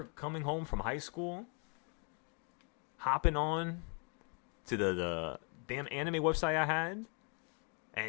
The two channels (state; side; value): quieter; right; 37.6 dB